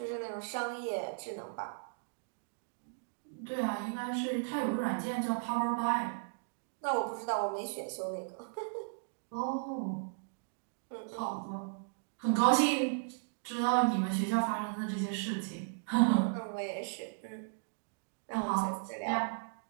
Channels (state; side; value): silent; left; digital silence